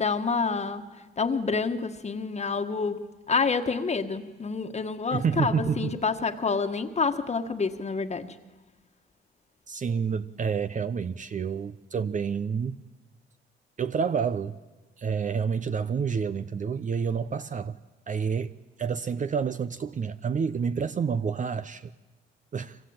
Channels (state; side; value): normal; both; correlation 0.42